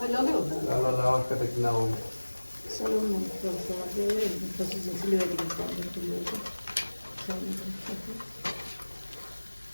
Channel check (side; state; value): both; inverted; correlation -1.00